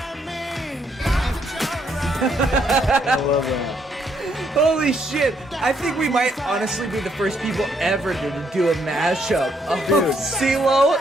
I love that. Holy shit! I think we might honestly be the first people ever to do a mashup of CeeLo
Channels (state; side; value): normal; both; correlation 0.72